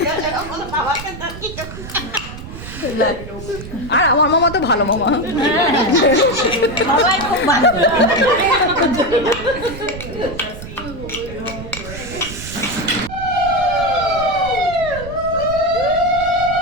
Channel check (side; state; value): right; noise; rumble, 11 dB below the sound